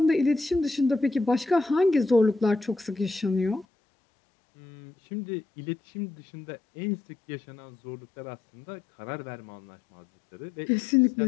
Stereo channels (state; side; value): drops out; right; at 3.7 s